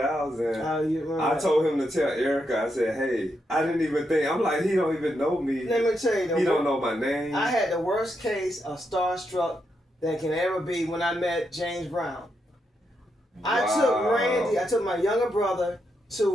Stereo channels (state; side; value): normal; both; correlation 0.82